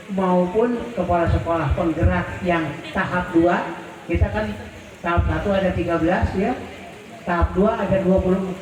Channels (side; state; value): both; identical; correlation 1.00